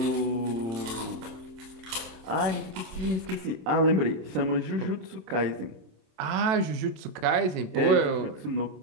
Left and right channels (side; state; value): left; late; 27 ms